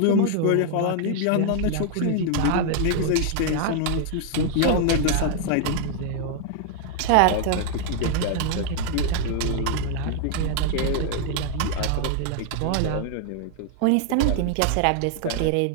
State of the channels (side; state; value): both; different; correlation 0.00